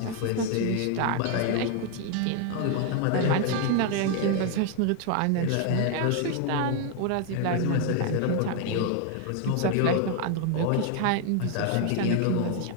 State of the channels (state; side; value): different; both; correlation 0.01